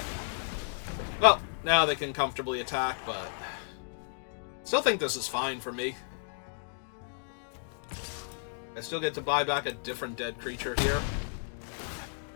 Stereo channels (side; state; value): right; silent; digital silence